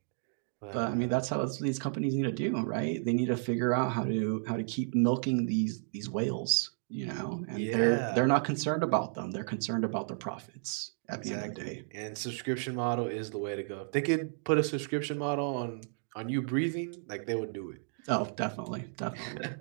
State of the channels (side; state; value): left; silent; digital silence